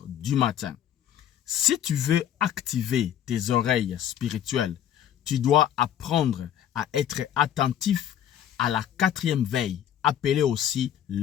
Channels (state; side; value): quieter; right; 10.3 dB